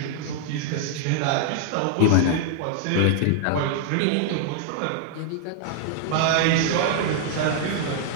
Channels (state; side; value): different; both; correlation -0.01